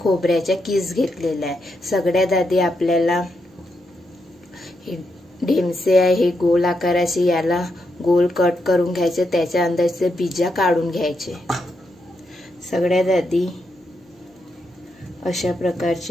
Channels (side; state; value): both; normal; correlation 0.82